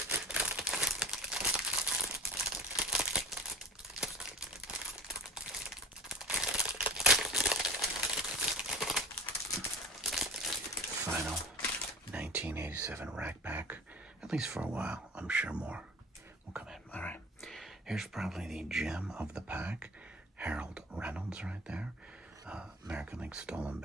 Final 1987 rack pack. At least for a while. I'm sure more will come in. All right. Here's probably the gem of the pack. Harold Reynolds right there. American League stolen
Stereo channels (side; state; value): both; normal; correlation 0.38